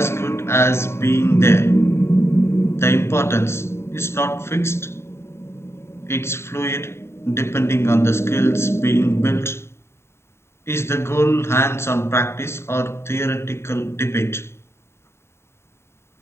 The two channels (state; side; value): late; right; 0.12 ms